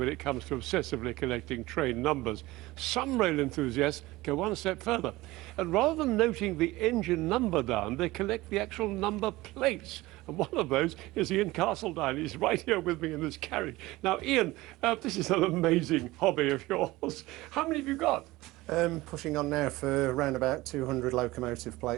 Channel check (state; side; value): quieter; left; 19.1 dB